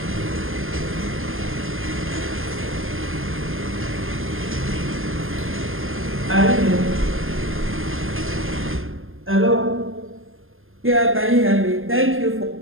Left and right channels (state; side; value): late; left; 0.60 ms